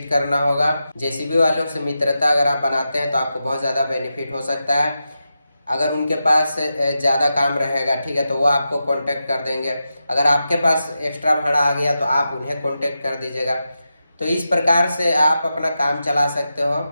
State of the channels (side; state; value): both; inverted; correlation -0.89